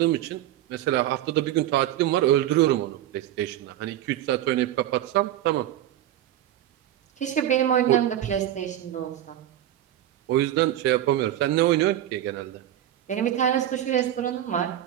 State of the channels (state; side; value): quieter; left; 12.4 dB